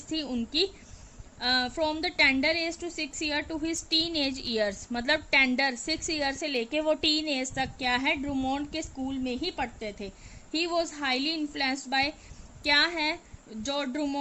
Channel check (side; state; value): both; identical; correlation 1.00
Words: थी उनकी। From the tender age to 6 year to his teen age years, मतलब टेंडर 6 ईयर से लेके वो टीन एज तक क्या है, ड्रूमोंड के स्कूल में ही पढ़ते थे। He was highly influenced by, क्या है, जो